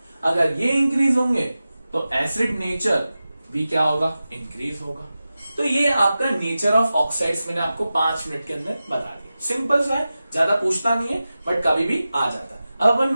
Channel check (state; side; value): inverted; both; correlation -0.94